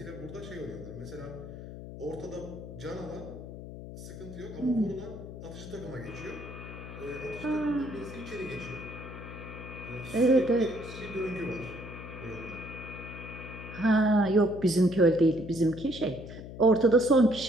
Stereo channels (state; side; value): noise; left; hum, 11 dB below the sound